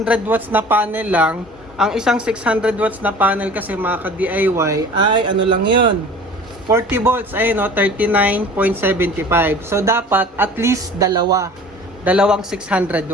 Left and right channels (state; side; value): normal; both; correlation 0.44